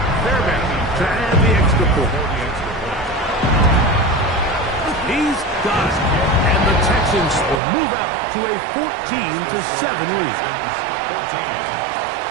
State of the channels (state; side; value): drops out; left; at 7.6 s